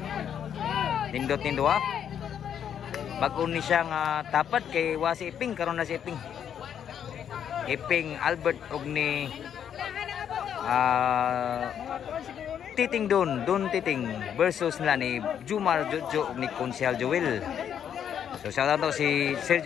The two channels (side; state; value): right; quieter; 8.9 dB